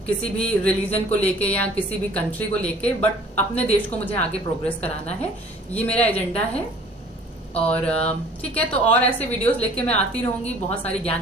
किसी भी रिलीजन को लेके या किसी भी कंट्री को लेके, बट अपने देश को मुझे आगे प्रोग्रेस कराना है, ये मेरा एजेंडा है। और ठीक है, तो और ऐसे वीडियोस लेके मैं आती रहूंगी, बहुत सारी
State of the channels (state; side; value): normal; both; correlation 0.51